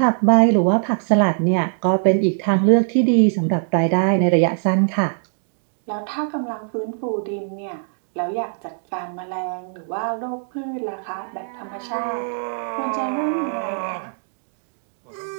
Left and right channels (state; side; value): silent; left; 64 dB below the other